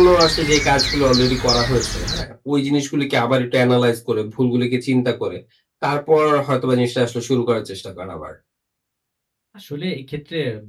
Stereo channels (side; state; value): both; identical; correlation 1.00